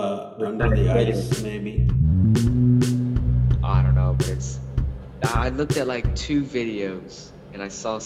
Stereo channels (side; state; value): both; identical; correlation 1.00